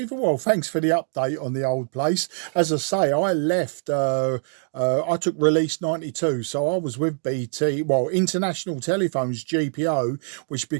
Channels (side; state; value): left; silent; 63 dB below the other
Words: Well, thanks for the update on the old place. As I say, I left. I took release 92, so I was with BT, well, International Telephones, GPO, which